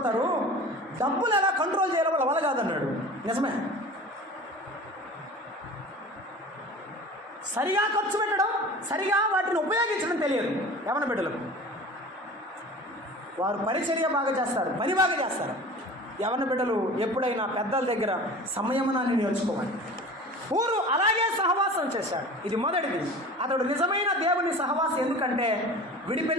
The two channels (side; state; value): both; normal; correlation 0.39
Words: డబ్బులు ఎలా కంట్రోల్ చేయాలో వాళ్ళ వల్ల కాదన్నాడు. నిజమే. సరిగా ఖర్చు పెట్టడం, సరిగా వాటిని ఉపయోగించడం తెలియదు యవన బిడ్డలకు. వారు పరిచర్య బాగా చేస్తారు, పని బాగా చేస్తారు. యవన బిడ్డలు ఎప్పుడైనా పెద్దల దగ్గర సంయమనాన్ని నేర్చుకోవాలి. ఊరు అలాగే సహవాసం చేశాడు. ఇది మొదటిది. అతడు నిజమైన దేవుని సహవాసం. ఎందుకంటే